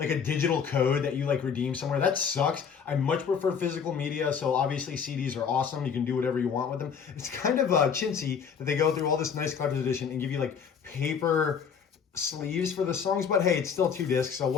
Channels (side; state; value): right; quieter; 6.8 dB